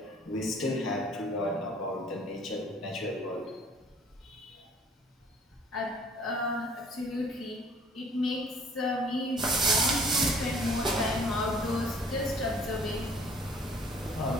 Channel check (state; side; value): normal; both; correlation 0.55